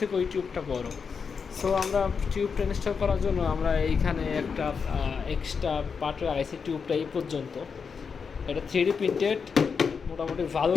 ওই টিউবটা বড়। সো আমরা টিউবটা ইনস্টল করার জন্য আমরা এইখানে একটা এক্সট্রা পার্ট লাগাইছি টিউবটা এই পর্যন্ত। এটা 3D প্রিন্টেড, মোটামুটি ভালো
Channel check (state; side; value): quieter; right; 5.8 dB